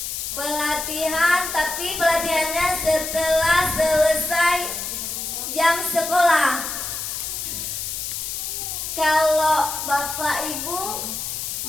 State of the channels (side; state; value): left; noise; hiss, 4 dB below the sound